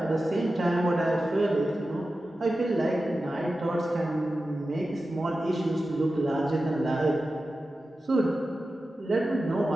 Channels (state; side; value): normal; both; correlation 0.93